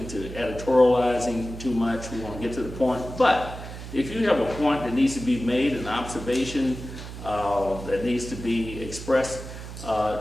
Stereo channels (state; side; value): noise; right; hum, 11 dB below the sound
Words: editorializing too much, we want to get to the point. But if you have a point that needs to be made, an observation that needs to be expressed,